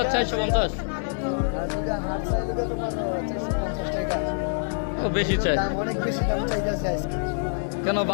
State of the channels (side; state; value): right; silent; 61 dB below the other